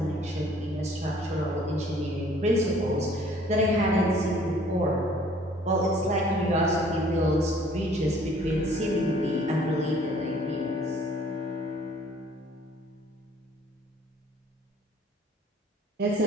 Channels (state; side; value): normal; both; correlation 0.56